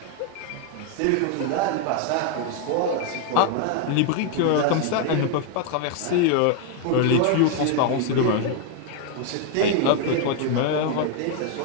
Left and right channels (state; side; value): different; both; correlation 0.01